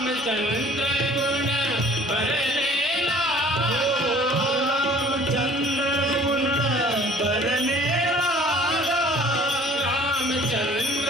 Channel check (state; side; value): normal; both; correlation 0.52